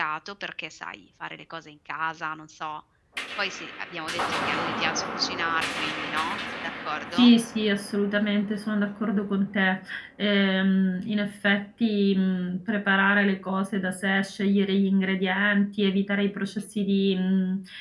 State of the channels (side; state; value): both; identical; correlation 1.00